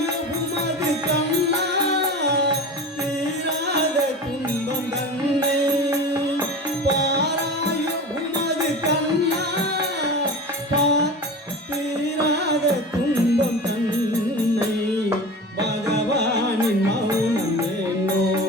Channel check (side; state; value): both; normal; correlation 0.32